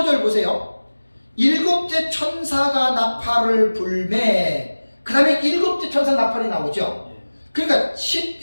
보세요. 일곱째 천사가 나팔을 불매. 그 다음에 일곱째 천사 나팔이 나오죠. 그러니까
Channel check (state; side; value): inverted; both; correlation -1.00